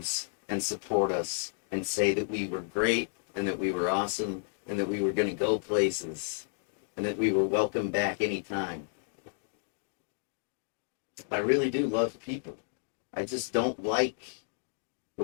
and support us and say that we were great and that we were awesome and that we were going to go places and that we were welcome back anytime. I really do love people. I just don't like the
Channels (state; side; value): silent; right; digital silence